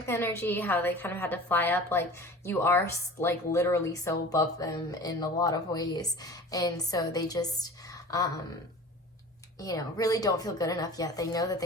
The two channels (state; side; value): normal; both; correlation 0.40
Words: energy, how they kind of had to fly up, like you are like literally so above them in a lot of ways, and so they just you know, really don't feel good enough yet. They know that